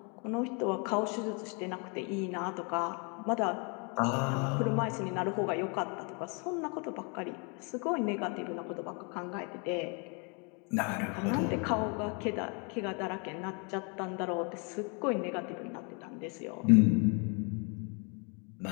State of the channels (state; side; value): quieter; right; 34.7 dB